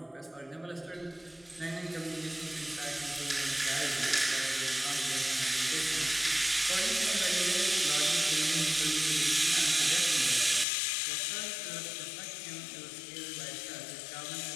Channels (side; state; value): right; drops out; at 10.7 s